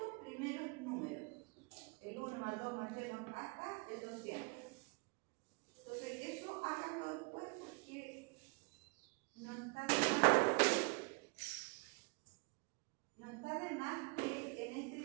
primeros números? El 1 más 2 más 3 más hasta el 200. Entonces, eso háganlo después porque no está de más que en este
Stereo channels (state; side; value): quieter; left; 30.2 dB